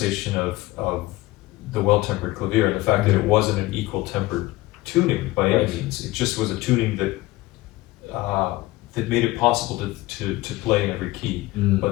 of the well-tempered clavier, and the fact that it wasn't an equal-tempered tuning by any means. It just was a tuning that that made it possible to play in every key, but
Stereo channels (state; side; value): quieter; right; 19.0 dB